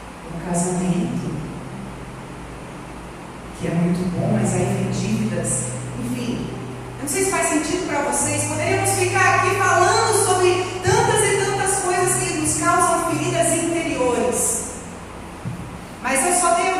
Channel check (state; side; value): identical; both; correlation 1.00